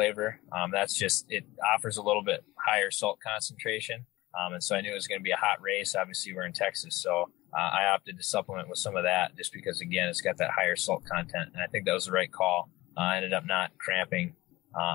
It offers a little bit higher salt concentration. And so I knew it was going to be a hot race. Obviously, we're in Texas, so I opted to supplement with some of that just because, again, it's got that higher salt content. And I think that was the right call. I ended up not cramping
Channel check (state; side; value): quieter; right; 19.2 dB